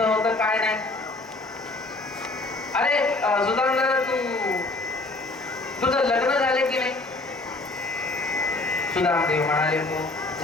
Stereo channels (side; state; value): right; quieter; 3.0 dB